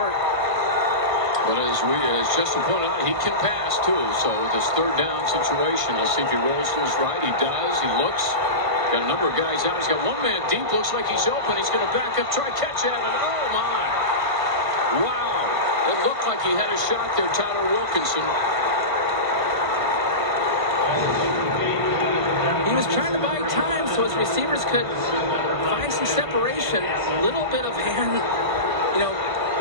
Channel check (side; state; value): left; late; 1.5 ms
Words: But as Justin pointed out, he can pass too. So with this 3rd down situation, let's see if he rolls to his right. He does. He looks. Got a number of guys out. He's got one man deep. Looks like he's open. He's going to back up, try catch at it. Oh my! Wow! It looked like he had a shot there, Tyler Wilkinson. He was trying to buy time so his receivers could find some separation. Little bit of hand,